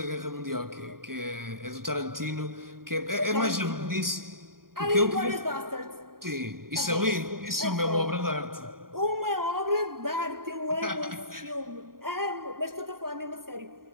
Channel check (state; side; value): late; left; 0.92 ms